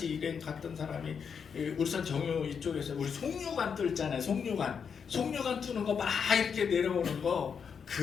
일행 갔던 사람이 울산 정유 이쪽에서 우리 송유관 뚫잖아요. 송유관 뚫는 거 막 이렇게 내려오는 거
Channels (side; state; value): right; quieter; 6.6 dB